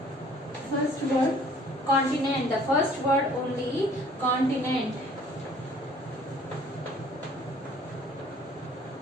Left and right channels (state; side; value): normal; both; correlation 0.55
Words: First word, continent. The first word only, continent.